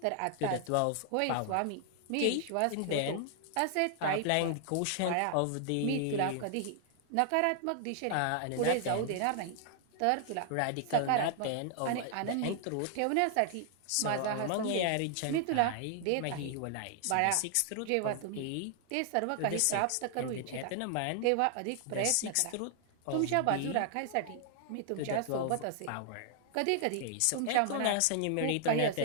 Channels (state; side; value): different; both; correlation 0.00